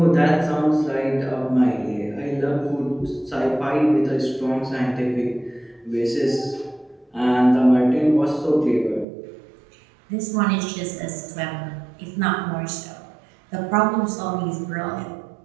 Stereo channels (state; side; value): drops out; left; at 9.1 s